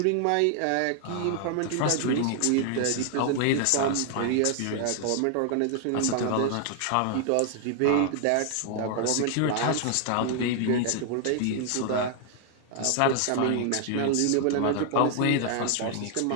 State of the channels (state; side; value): different; both; correlation 0.00